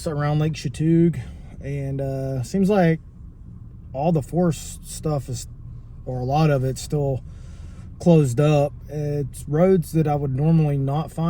around Lake Chatuge, and seems like all the forest stuff is, or a lot of it's still closed up. It's roads that I would normally not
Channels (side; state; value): both; identical; correlation 1.00